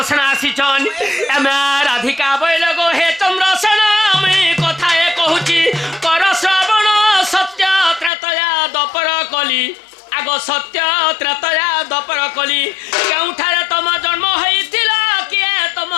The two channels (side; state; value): right; drops out; at 8.1 s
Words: আসিছন এমে রাধিকা বইল গো হে চন্দ্রসেন আমি কথায় কহুছি কর শ্রবণ সত্য ত্রেতয়া দপর কলি আগ সত্য ত্রেতয়া দপর কলি কেউঠারে তোম জন্ম হয়েছিল কিয়ে